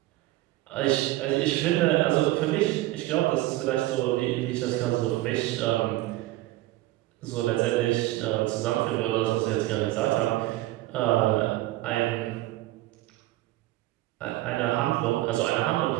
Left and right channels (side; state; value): left; quieter; 17.2 dB